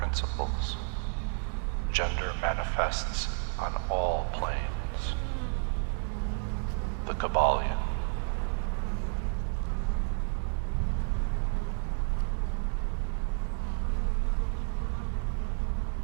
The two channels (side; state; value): left; silent; 57 dB below the other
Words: Gender manifests on all planes. The Kybalion.